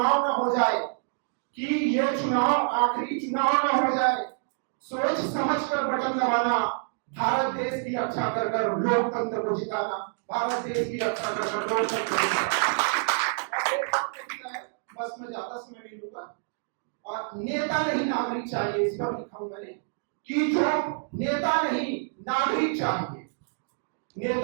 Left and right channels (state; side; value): silent; left; digital silence